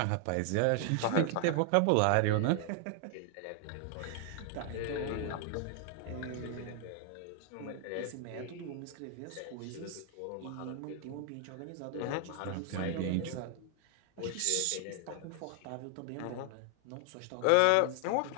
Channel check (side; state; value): both; different; correlation 0.00